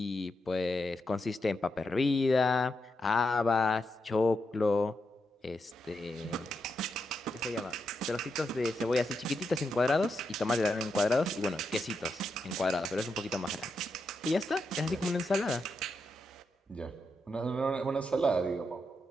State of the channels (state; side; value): normal; both; correlation 0.84